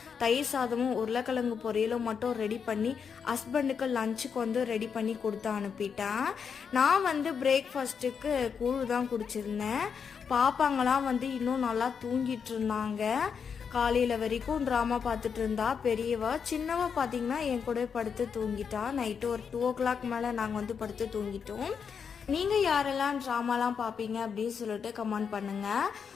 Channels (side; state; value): right; quieter; 6.6 dB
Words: தயிர் சாதமும் உருளைக்கிழங்கு பொரியலும் மட்டும் ரெடி பண்ணி ஹஸ்பண்டுக்கு லஞ்சுக்கு வந்து ரெடி பண்ணி கொடுத்து அனுப்பிட்டேன். நான் வந்து பிரேக்ஃபாஸ்ட்டுக்கு கூழ் தான் குடிச்சிருந்தேன். பாப்பாங்களாம் வந்து இன்னும் நல்லா தூங்கிட்டு இருந்தாங்க. காலையில் வரைக்கும் ட்ராமா பார்த்துட்டு இருந்தா பெரியவா. சின்னவா பார்த்தீங்கன்னா என் கூட படுத்து தூங்கிட்டா. நைட்டு ஒரு 2 o'clock மேலே நாங்கள் வந்து படுத்து தூங்கிட்டோம். நீங்கள் யாரெல்லாம் ட்ராமாலாம் பார்ப்பீங்க அப்படின்னு சொல்லிட்டு கமெண்ட் பண்ணுங்கள்.